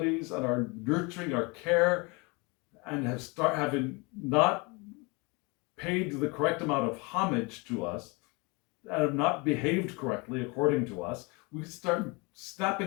and our nurturing our care, and having not paid the correct amount of homage to us and have not behaved correctly according to us, we start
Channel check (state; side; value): quieter; right; 28.4 dB